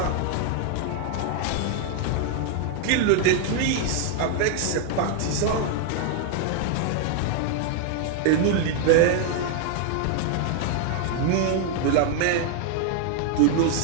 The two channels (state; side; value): different; both; correlation 0.00